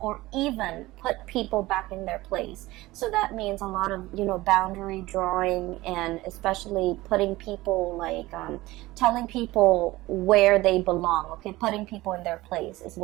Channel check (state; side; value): quieter; left; 18.8 dB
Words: even put people back in their place. So that means a lot of, you know, boundary drawing, and especially putting people like telling people where they belong, okay? Putting people in their place is